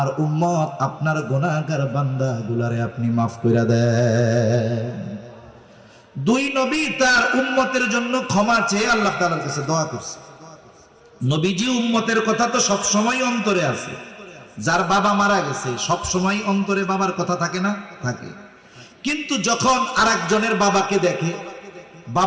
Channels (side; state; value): both; identical; correlation 1.00